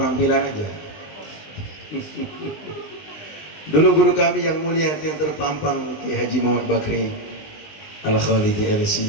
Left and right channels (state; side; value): late; right; 20 ms